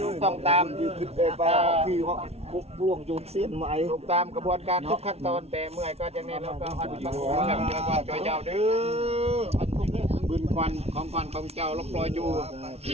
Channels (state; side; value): late; left; 0.30 ms